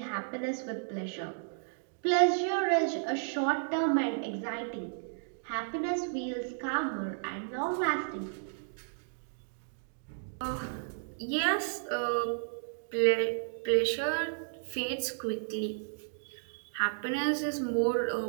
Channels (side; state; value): left; silent; digital silence